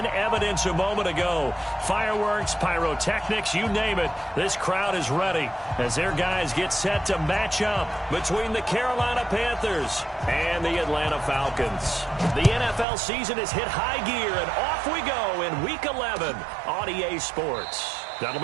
evidence a moment ago. Fireworks, pyrotechnics, you name it. This crowd is ready as their guys get set to match up between the Carolina Panthers and the Atlanta Falcons. The NFL season has hit high gear, and off we go in Week 11 on EA Sports. That'll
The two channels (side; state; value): left; drops out; at 12.9 s